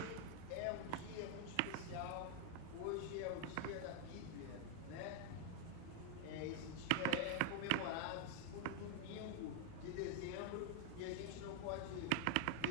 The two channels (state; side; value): different; both; correlation 0.00